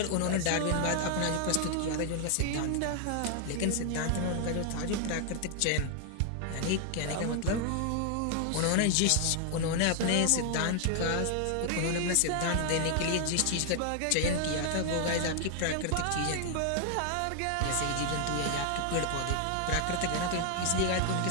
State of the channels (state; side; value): different; both; correlation 0.00